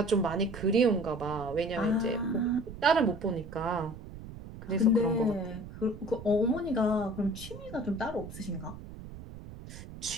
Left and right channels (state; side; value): noise; right; rumble, 13 dB below the sound